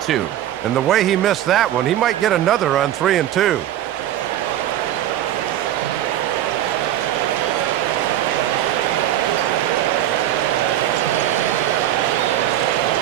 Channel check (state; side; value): quieter; left; 12.3 dB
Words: And the way he missed that one, he might get another on 3-2.